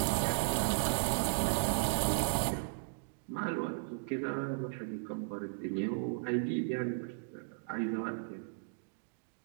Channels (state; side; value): silent; left; digital silence